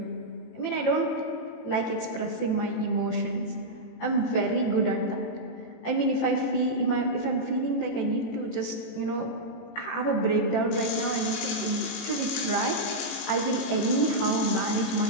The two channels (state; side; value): late; right; 18 ms